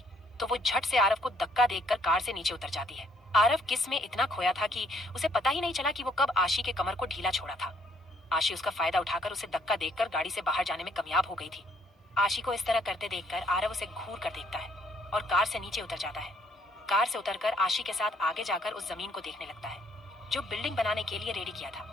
तो वो झट से आरव को धक्का देकर कार से नीचे उतर जाती है। आरव किस में इतना खोया था कि उसे पता ही नहीं चला कि वो कब आशी के कमर को ढीला छोड़ा था। आशी उसका फायदा उठाकर उसे धक्का देकर गाड़ी से बाहर जाने में कामयाब हो गई थी। आशी को इस तरह करते देखकर आरव उसे घूर कर देखता है और कार से नीचे उतर जाता है। कार से उतरकर आशी के साथ आगे जाकर उस जमीन को देखने लगता है जो बिल्डिंग बनाने के लिए रेडी किया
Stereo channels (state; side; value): normal; both; correlation 0.67